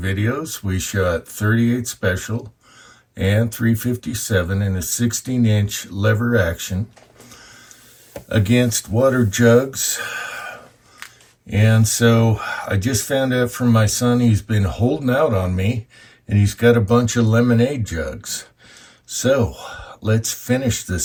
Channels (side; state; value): both; identical; correlation 1.00